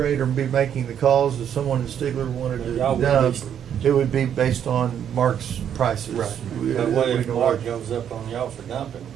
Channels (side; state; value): left; quieter; 9.1 dB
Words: or be making the calls if someone in Stigler wanted to Y'all would dump. be- It would be based on Mark's prices. Right. But what if We- Mark goes up on y'all for dumping?